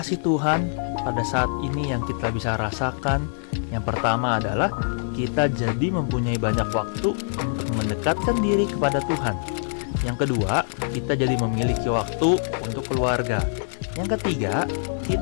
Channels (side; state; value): right; silent; 61 dB below the other